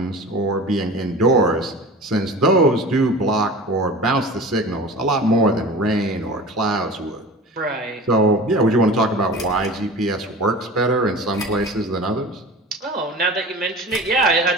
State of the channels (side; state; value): both; normal; correlation 0.37